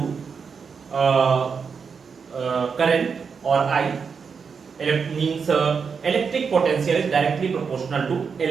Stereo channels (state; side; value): quieter; left; 5.9 dB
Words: current और I means electric potential is directly proportional to